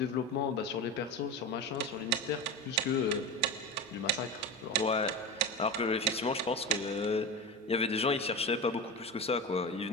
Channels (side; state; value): both; normal; correlation 0.25